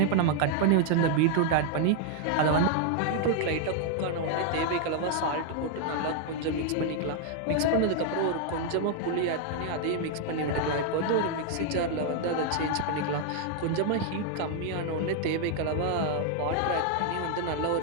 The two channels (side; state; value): both; different; correlation 0.00